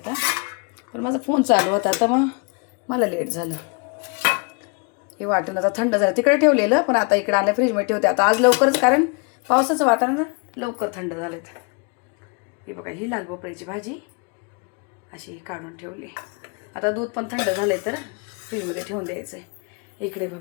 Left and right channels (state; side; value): quieter; right; 33.9 dB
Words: पण माझा फोन चालू होता तर मग मला लेट झालं. हे वाटण आता थंड झालं, तिकडे ठेवलेलं पण आता इकडे आणलं फ्रीजमध्ये ठेवते. आता आज लवकरच, कारण पावसाचं वातावरण लवकर थंड झालं. हे बघा ही लाल भोपळ्याची भाजी अशी काढून ठेवली. आता दूध पण थंड झालं आहे तर फ्रीजमध्ये ठेवून द्यायचं आहे. इकडे